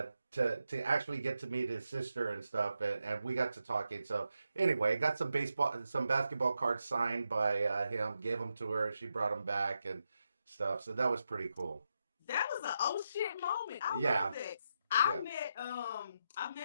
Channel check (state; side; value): inverted; both; correlation -0.85